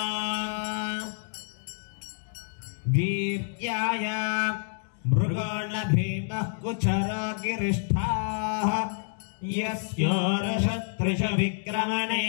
वीर्याय मृगो न भीमः कुचरो गिरिष्ठाः यस्योरशत्रुष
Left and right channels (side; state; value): right; silent; digital silence